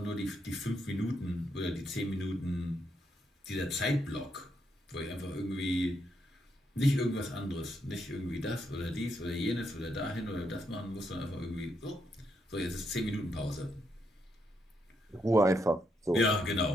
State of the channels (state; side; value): normal; both; correlation 0.78